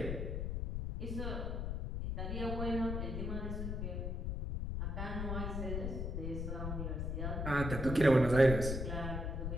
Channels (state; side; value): noise; left; rumble, 2 dB below the sound